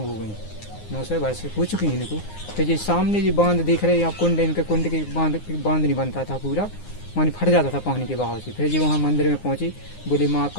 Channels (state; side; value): late; right; 9.7 ms